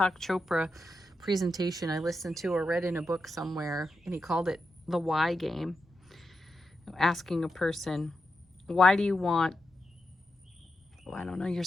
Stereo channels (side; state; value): both; normal; correlation 0.87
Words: Chopra presentation I listened to or read in a book somewhere, and he called it the why game. Asking a person, why do you want, I don't know, your